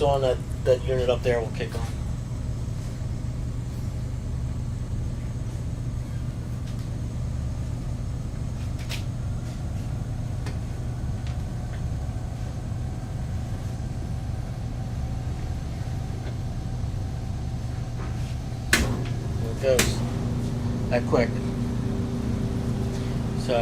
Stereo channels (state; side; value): identical; both; correlation 1.00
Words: on, that unit up there will kick on. There it goes. That quick.